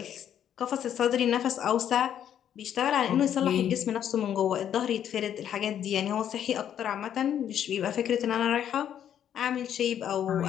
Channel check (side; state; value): right; quieter; 9.8 dB